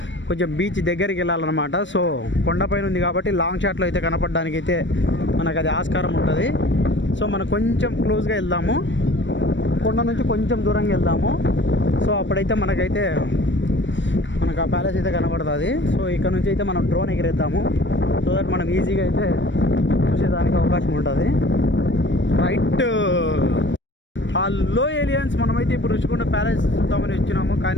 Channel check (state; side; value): late; right; 0.54 ms